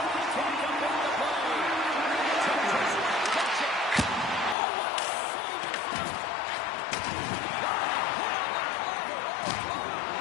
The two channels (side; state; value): right; drops out; at 4.5 s